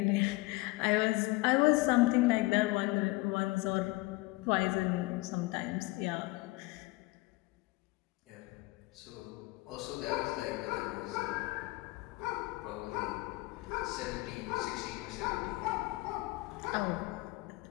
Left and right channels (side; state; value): right; quieter; 22.2 dB